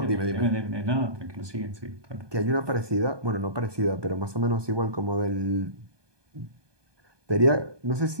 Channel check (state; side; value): late; left; 1.2 ms